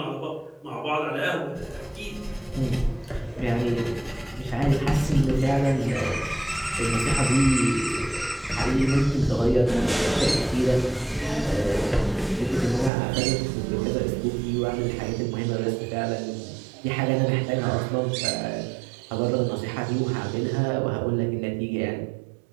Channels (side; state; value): left; drops out; at 12.9 s